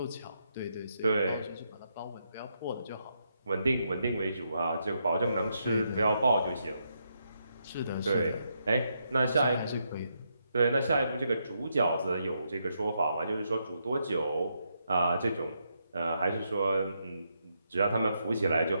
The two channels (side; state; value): both; inverted; correlation -0.80